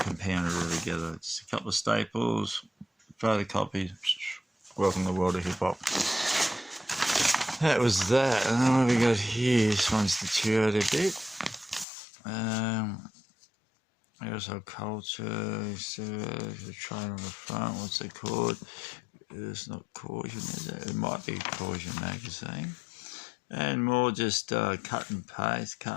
it all together. Just a couple of staples, photocopies. Welcome to the world of hip hop. That was that. And then what we got here, this one's deteriorated a bit. Household culture, so the train on the front, what's it called? It's not Caution, is it? It might be Caution magazine. And more just cut and paste.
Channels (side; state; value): right; drops out; at 11.9 s